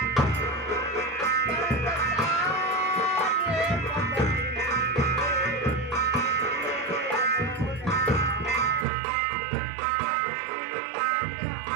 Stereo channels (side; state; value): left; drops out; at 8.8 s